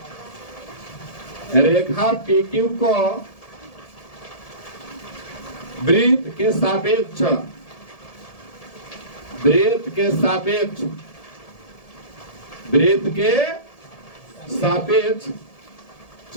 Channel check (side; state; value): right; late; 1.7 ms